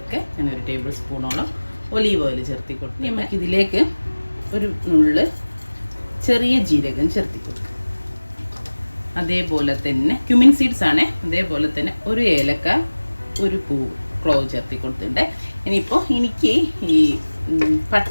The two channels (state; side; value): inverted; both; correlation -1.00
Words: ഞാനൊരു ടേബിൾ സ്പൂണോളം ഒലീവ് ഓയിൽ ചേർത്തി കൊടുക്കും. നമുക്ക് ഇതിലേക്ക് ഒരു നുള്ള് ചെറിയ ജീരകം ചേർത്തി കൊടുക്കുക. അതേപോലെ തന്നെ ക്യുമിൻ സീഡ്സ് ആണ്. അതേപോലെ തന്നെ ഒരു ഏലക്ക, ഒരു പൂവ്, ക്ലോവ് ചേർത്തി കൊടുത്തിട്ടുണ്ട്. ഇനിയിപ്പോൾ എനിക്ക് ഈ